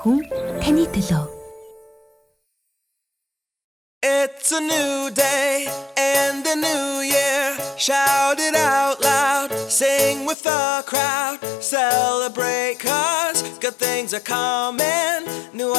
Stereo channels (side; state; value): right; drops out; at 10.4 s